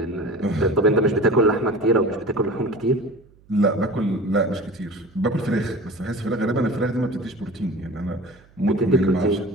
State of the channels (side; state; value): right; noise; hum, 29 dB below the sound